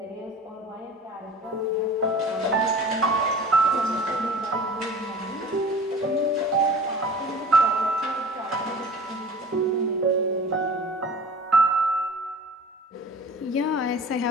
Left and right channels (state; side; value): normal; both; correlation 0.42